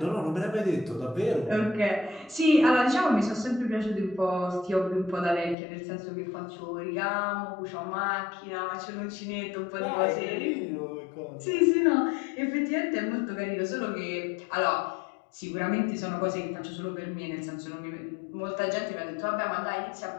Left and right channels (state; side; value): drops out; right; at 5.6 s